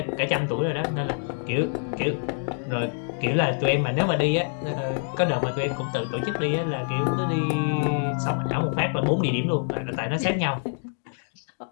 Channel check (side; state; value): right; silent; digital silence